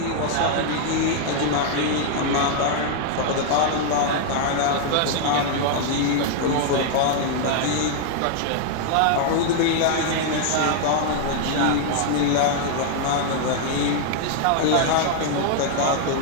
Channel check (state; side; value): different; both; correlation 0.00